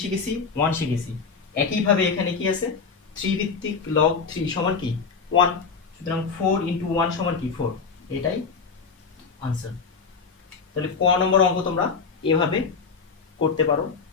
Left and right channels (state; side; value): quieter; right; 5.3 dB